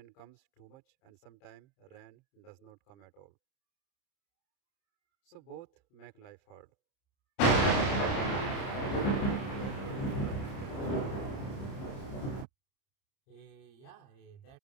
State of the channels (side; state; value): right; late; 30 ms